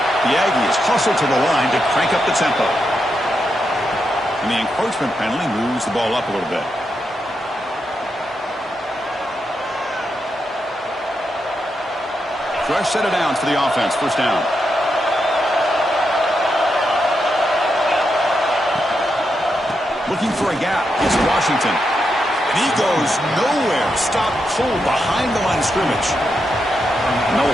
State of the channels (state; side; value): normal; both; correlation 0.84